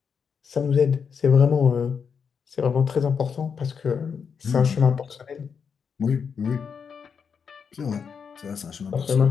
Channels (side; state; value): right; quieter; 6.4 dB